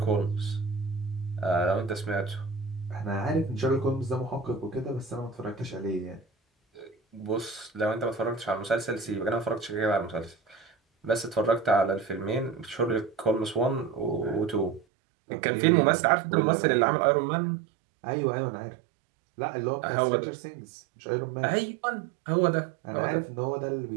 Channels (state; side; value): drops out; left; at 14.9 s